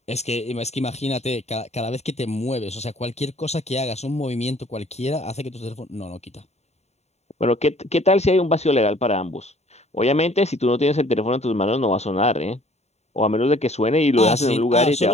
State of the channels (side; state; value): right; late; 0.32 ms